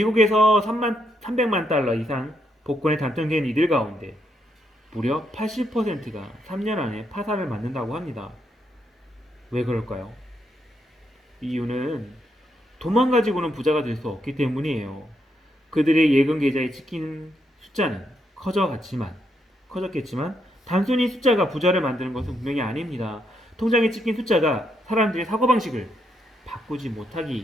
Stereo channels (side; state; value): both; normal; correlation 0.78